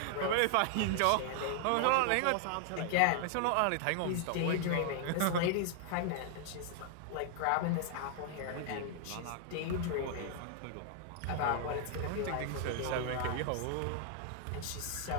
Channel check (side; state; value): both; different; correlation 0.00